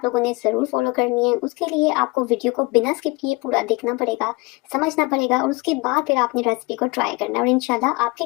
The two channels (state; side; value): quieter; right; 25.5 dB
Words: लोगों ने ज़रूर फॉलो करनी है। उसके लिए आपको वीडियो को बिना स्किप किए पूरा देखना पड़ेगा, समझना पड़ेगा और उसके बाद फिर आपने रेसिपी को ट्राई करना है और इंशाल्लाह आपके